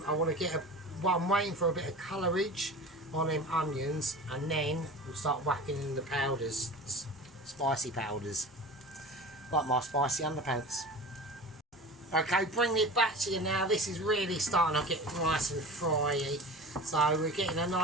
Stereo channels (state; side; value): normal; both; correlation 0.35